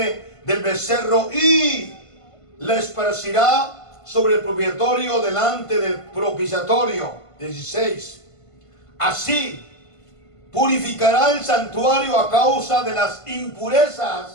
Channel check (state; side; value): late; right; 1.5 ms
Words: del becerro, y la esparcirá sobre el propiciatorio delante del propiciatorio. 16. Así purificará el santuario a causa de las